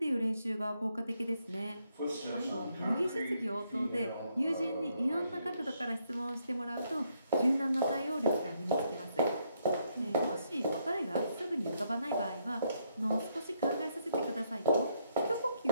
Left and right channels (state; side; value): inverted; both; correlation -0.75